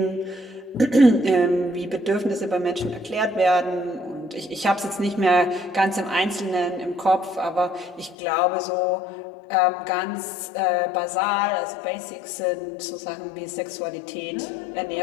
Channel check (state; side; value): drops out; right; at 8.2 s